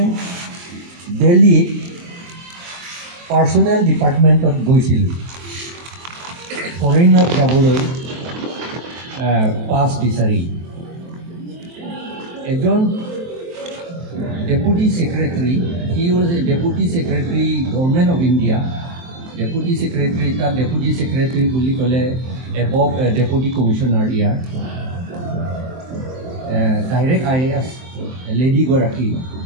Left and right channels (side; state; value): left; late; 23 ms